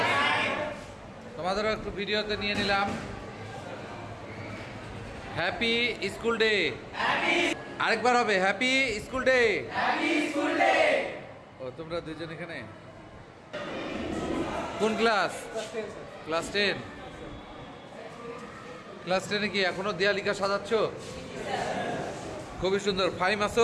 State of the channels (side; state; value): both; identical; correlation 1.00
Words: তোমাদেরও একটু ভিডিওতে নিয়ে নিলাম। হ্যাপি স্কুল ডে, আরেকবার হবে হ্যাপি স্কুল ডে। ও তোমরা দুজন এখানে কোন ক্লাস? ক্লাস 10। ক্লাস 10-এ কি এখনো দেয়ালিকা সাজাচ্ছ? খুবই সুন্দর। ফাইম